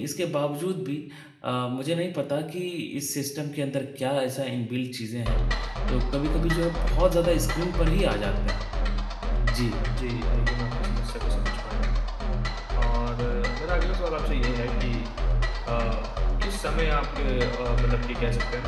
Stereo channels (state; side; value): identical; both; correlation 1.00